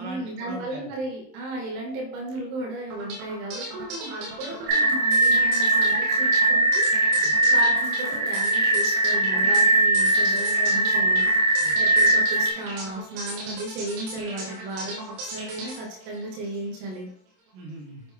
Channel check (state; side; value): late; left; 27 ms